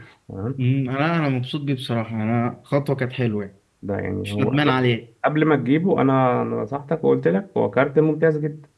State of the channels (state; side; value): identical; both; correlation 1.00